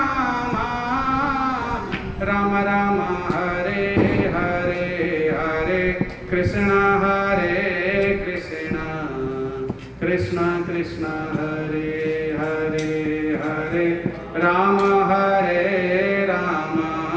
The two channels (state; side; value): identical; both; correlation 1.00